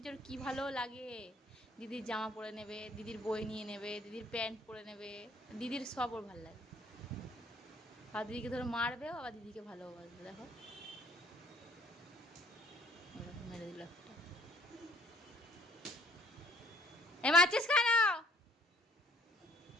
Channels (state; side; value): normal; both; correlation 0.60